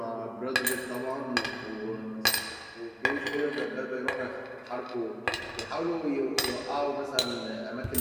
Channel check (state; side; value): identical; both; correlation 1.00